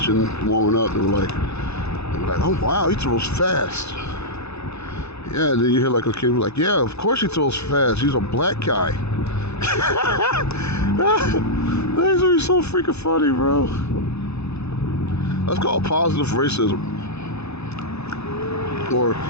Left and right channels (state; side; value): late; right; 0.80 ms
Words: warming up. They were like, oh wow, he throws fast. Yeah, and then you hear like a kid like, yeah, of course he throws fast. He's a black guy. That's gonna be so freaking funny, bro. That's called positive racism, or